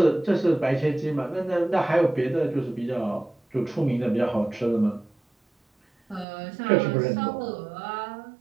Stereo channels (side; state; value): left; drops out; at 6.2 s